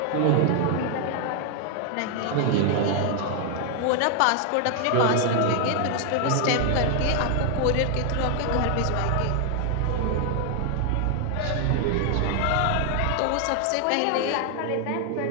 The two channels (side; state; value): both; different; correlation 0.00